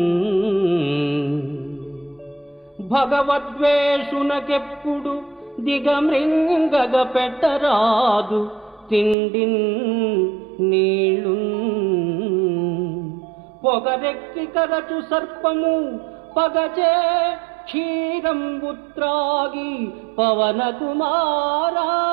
భగవద్వేషునకెప్పుడు దిగమృంగగ పెట్టరాదు తిండి నీళ్ళు. పొగరెక్కి కరచు సర్పము పగచే క్షీరంబు త్రాగి పవన కుమారా.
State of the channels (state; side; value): drops out; left; at 9.2 s